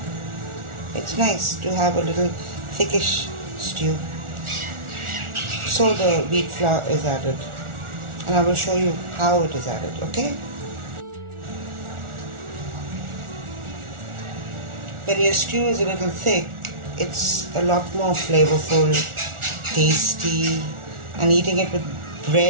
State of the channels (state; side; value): late; left; 1.4 ms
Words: it's nice to have a little thickish stew. So the wheat flour is added, and I will show you how it is added, okay? When your stew is a little thick, it's a lot more flavorful, tasty, and eating it with